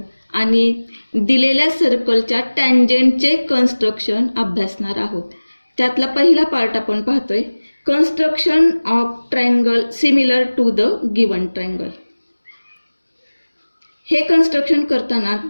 आणि दिलेल्या सर्कलच्या टँजेंटचे कन्स्ट्रक्शन अभ्यासणार आहोत. त्यातला पहिला पार्ट आपण पाहतोय, construction of triangle similar to the given triangle. हे कन्स्ट्रक्शन करताना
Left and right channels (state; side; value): inverted; both; correlation -1.00